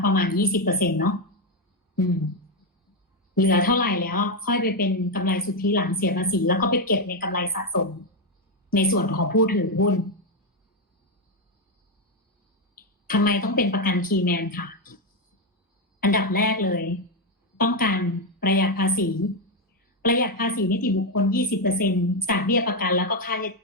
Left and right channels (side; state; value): both; normal; correlation 0.06